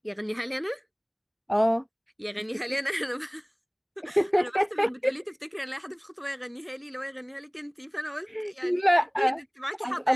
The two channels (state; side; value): identical; both; correlation 1.00